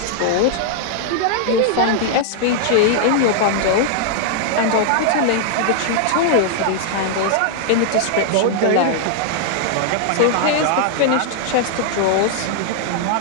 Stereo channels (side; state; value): both; different; correlation -0.01